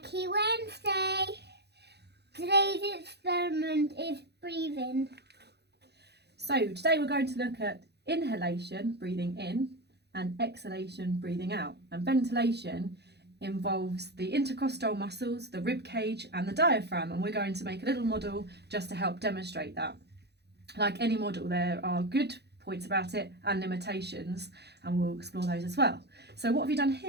Wednesday. Today's experiment is breathing. So today we're going to look at inhalation, breathing in, and exhalation, breathing out. And ventilation involves the intercostal muscles, the rib cage and the diaphragm, and we're going to make a little model just to help demonstrate that. Like any model, there are good points about it and limitations, and we'll explore those as well. So what have you done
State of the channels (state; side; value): late; left; 0.48 ms